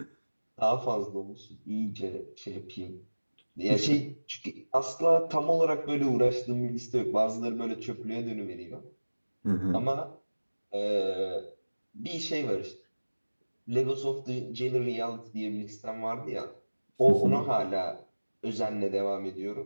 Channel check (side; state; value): both; inverted; correlation -1.00